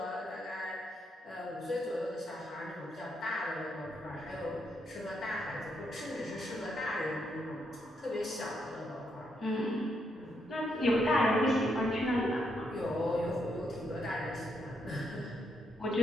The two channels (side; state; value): both; normal; correlation 0.78